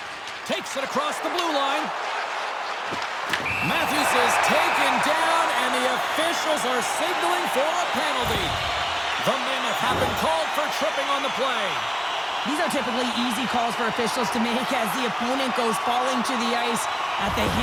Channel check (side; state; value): both; identical; correlation 1.00